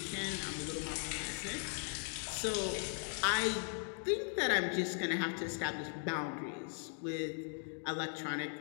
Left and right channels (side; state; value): right; silent; 52 dB below the other